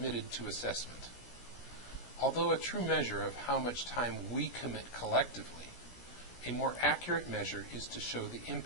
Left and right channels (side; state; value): right; late; 17 ms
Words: to assessment. Although a true measure of how much time we commit collectively, a more accurate measure is to show the